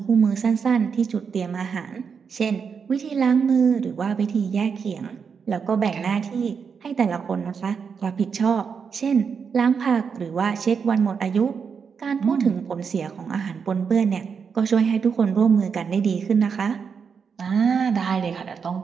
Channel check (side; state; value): left; quieter; 6.2 dB